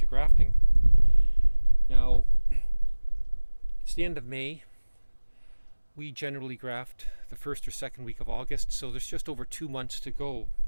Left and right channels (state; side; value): inverted; both; correlation -1.00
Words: grafting. Now, it's the end of May. We generally graft the first or second week of August, so there's just over 2 months to go